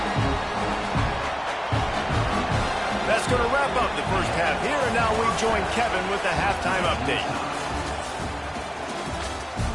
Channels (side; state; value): both; identical; correlation 1.00